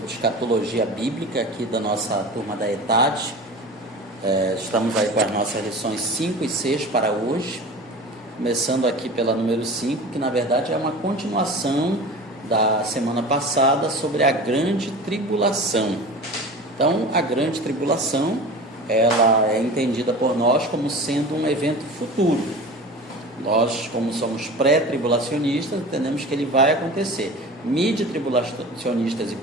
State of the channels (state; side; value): normal; both; correlation 0.35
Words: escatologia bíblica aqui da nossa turma da ETAD. Estamos aí com as nossas lições 5 e 6 para hoje, começando aqui pela número 5, que na verdade é uma continuação da semana passada sobre a grande tribulação. Então, a grande tribulação, ela é entendida por nós como sendo um evento futuro. Nós, como somos pré-tribulacionistas, entendemos que ele vai acontecer. Mid-tribulacionistas e